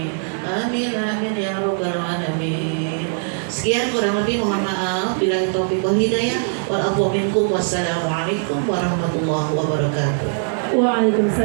آمين آمين يا رب العالمين. Sekian kurang lebih mohon maaf bila taufiq wal hidayah wal afwa minkum wassalamualaikum warahmatullahi wabarakatuh.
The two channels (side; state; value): left; silent; digital silence